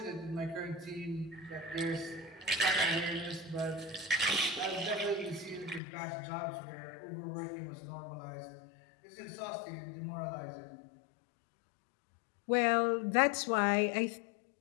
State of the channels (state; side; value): drops out; right; at 5.8 s